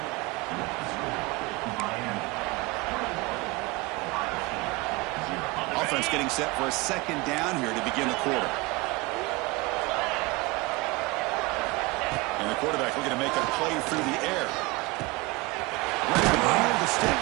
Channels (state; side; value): quieter; left; 23.8 dB